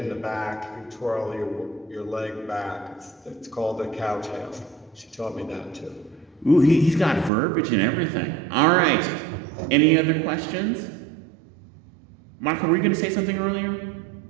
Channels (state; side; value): drops out; left; at 7.3 s